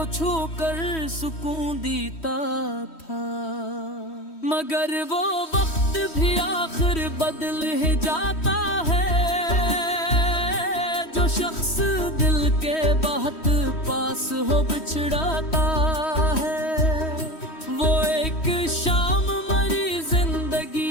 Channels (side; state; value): right; late; 3.1 ms